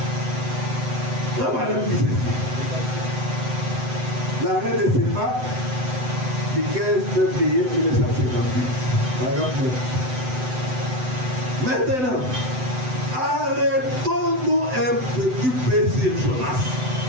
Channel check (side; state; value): left; late; 7.9 ms